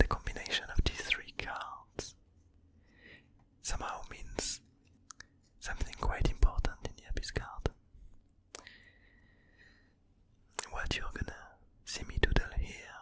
combination of these three cards somehow means something quite important in the Abyss card. What you're gonna see me doodle here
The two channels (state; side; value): identical; both; correlation 1.00